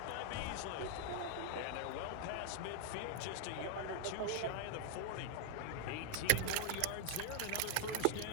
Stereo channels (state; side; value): different; both; correlation 0.01